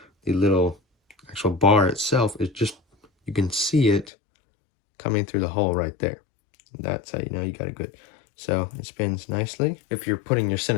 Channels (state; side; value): drops out; right; at 4.1 s